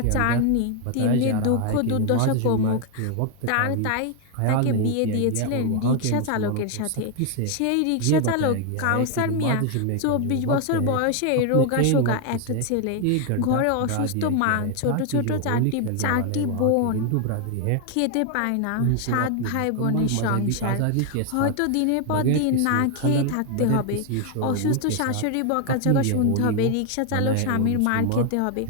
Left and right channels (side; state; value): both; different; correlation 0.01